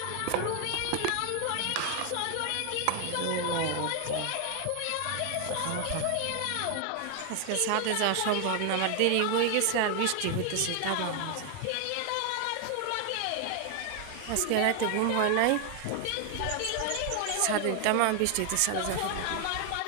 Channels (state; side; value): different; both; correlation 0.01